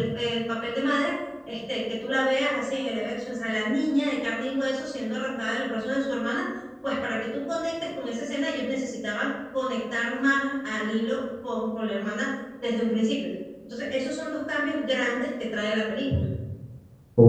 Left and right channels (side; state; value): both; identical; correlation 1.00